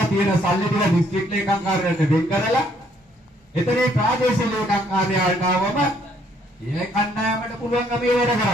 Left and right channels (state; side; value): normal; both; correlation 0.67